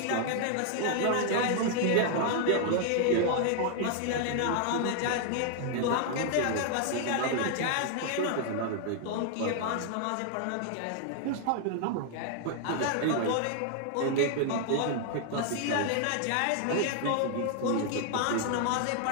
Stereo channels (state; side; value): different; both; correlation 0.00